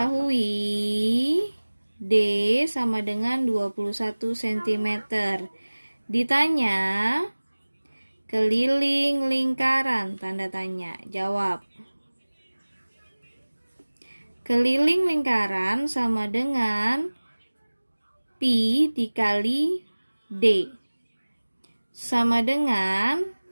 D sama dengan 21 cm. Ditanya keliling lingkaran, tanda tanya, jawab. Keliling lingkaran sama dengan pi dikali D. Sama dengan,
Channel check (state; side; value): inverted; both; correlation -1.00